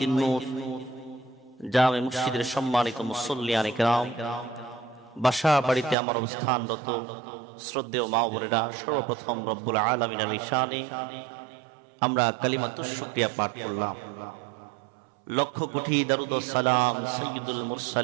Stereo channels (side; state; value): left; drops out; at 6.0 s